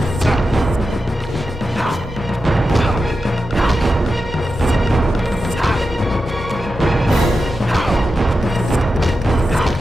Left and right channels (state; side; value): normal; both; correlation 0.90